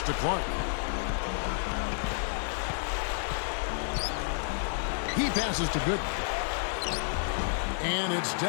to Clark. He passes to Gooden. And it's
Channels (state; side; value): silent; right; digital silence